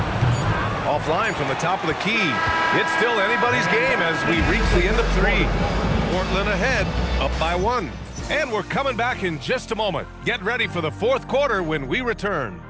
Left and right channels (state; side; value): identical; both; correlation 1.00